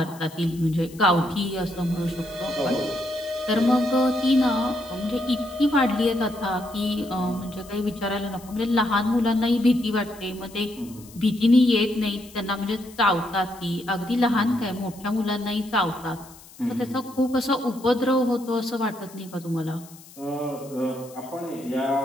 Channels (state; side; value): noise; left; hiss, 21 dB below the sound